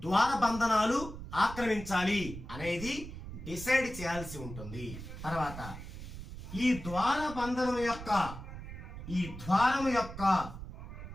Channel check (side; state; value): right; noise; rumble, 11 dB below the sound